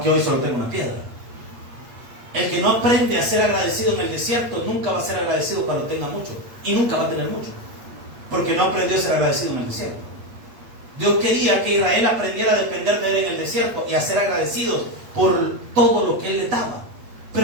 hoy solo tengo una piedra. El que no aprende a ser agradecido en el desierto nunca va a ser agradecido cuando tenga mucho. Y nunca va a tener mucho, porque no aprendió a ser agradecido en el desierto. Dios quería que Israel aprendiera a depender de Él en el desierto y a ser agradecidos por todo lo que Él le daba.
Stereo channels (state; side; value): late; left; 8.4 ms